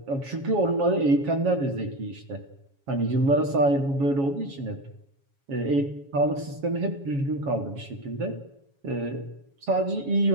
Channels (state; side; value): late; left; 7.3 ms